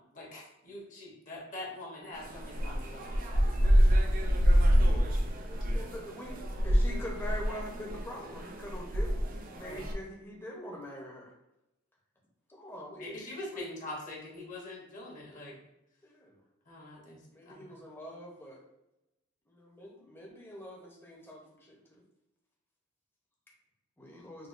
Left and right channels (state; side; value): normal; both; correlation 0.95